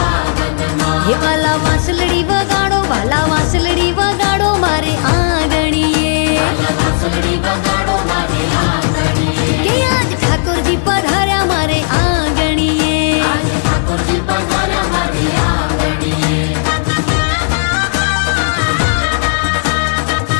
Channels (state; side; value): silent; right; digital silence